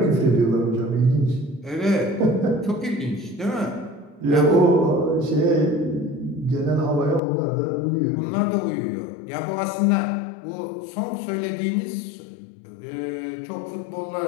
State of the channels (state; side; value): drops out; right; at 7.2 s